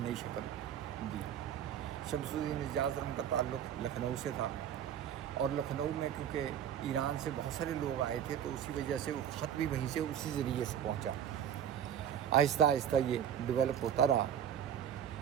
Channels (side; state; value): left; quieter; 9.4 dB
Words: نئی شکل دی. شمس الدین اعجاز ارقم کا تعلق لکھنؤ سے تھا، اور لکھنؤ میں کیونکہ ایران سے بہت سارے لوگ آئے تھے تو اسی وجہ سے وہ خط بھی وہیں سے اسی ذریعے سے پہنچا. آہستہ آہستہ یہ ڈیولپ ہوتا رہا.